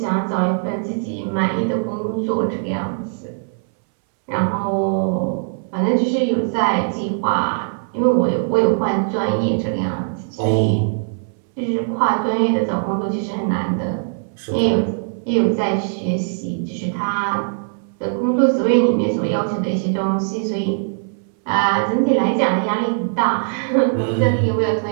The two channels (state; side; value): silent; left; 66 dB below the other